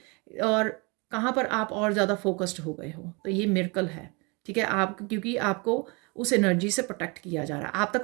और कहाँ पर आप और ज़्यादा फोकस्ड हो गए हो। तो ये मिरेकल है, ठीक है। आप क्योंकि आपको उस एनर्जी से प्रोटेक्ट किया जा रहा है, आप तक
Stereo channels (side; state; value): left; quieter; 29.8 dB